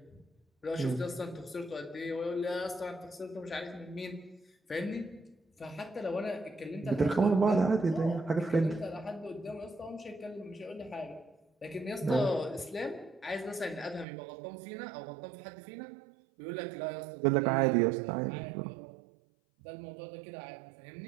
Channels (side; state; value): left; drops out; at 14.1 s